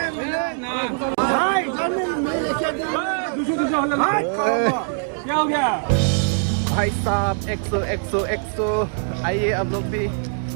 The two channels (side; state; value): left; silent; digital silence